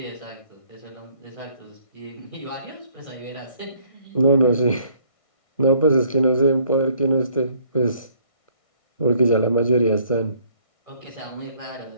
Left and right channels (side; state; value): right; late; 1.6 ms